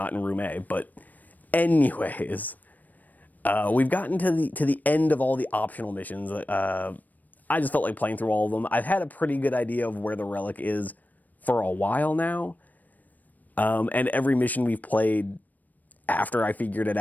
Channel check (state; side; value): late; right; 0.082 ms